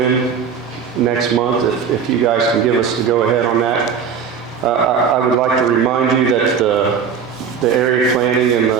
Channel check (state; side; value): quieter; left; 6.7 dB